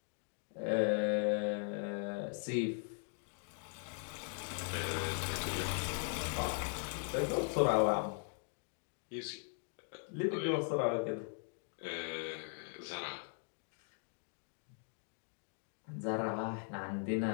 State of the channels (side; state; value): right; silent; 51 dB below the other